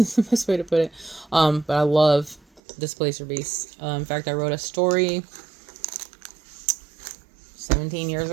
the best way to put it. But I love Displacer Beasts. In fact, I wrote a story 17 years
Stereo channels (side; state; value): left; drops out; at 2.6 s